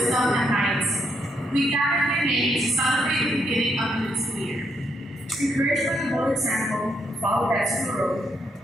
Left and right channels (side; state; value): both; normal; correlation 0.77